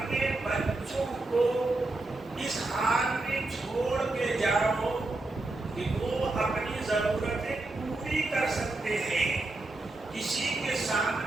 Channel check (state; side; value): quieter; left; 3.0 dB